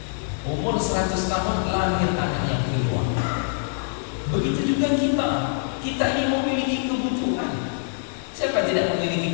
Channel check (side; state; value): right; silent; digital silence